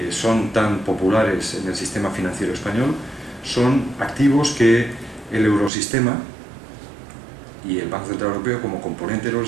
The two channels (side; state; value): left; drops out; at 5.7 s